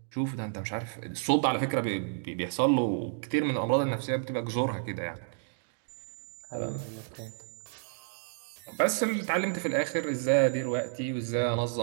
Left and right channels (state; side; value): silent; left; digital silence